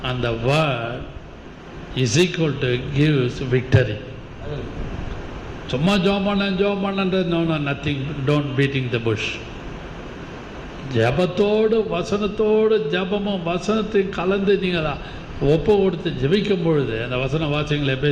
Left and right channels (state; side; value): identical; both; correlation 1.00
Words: and the word is equal to gives victory. சும்மா ஜெபம் பண்ணன்றது no nothing, don't beating the bush. ஜபத்தோடு வசனத்தோடு ஜபமும் வசனத்தையும் கலந்து நீங்கள் ஒப்பு கொடுத்து ஜெபிக்கும் பொழுது அந்த வசனம் வாசிங்களே.